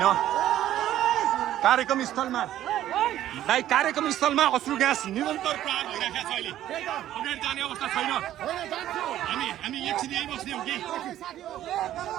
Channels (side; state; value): left; quieter; 12.6 dB